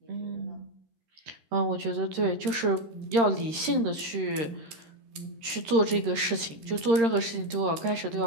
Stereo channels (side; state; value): left; late; 13 ms